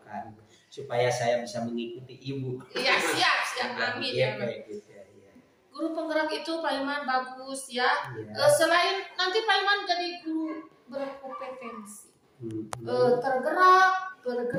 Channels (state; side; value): identical; both; correlation 1.00